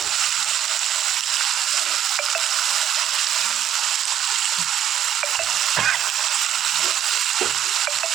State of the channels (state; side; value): quieter; left; 10.4 dB